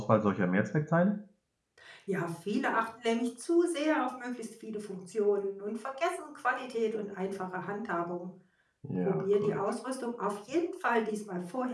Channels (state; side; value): identical; both; correlation 1.00